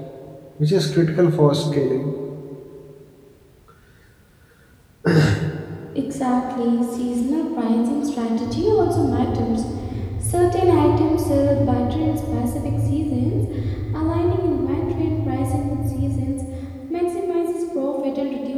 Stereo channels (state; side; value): identical; both; correlation 1.00